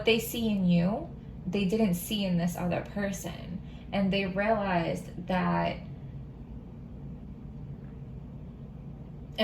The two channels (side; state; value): both; identical; correlation 1.00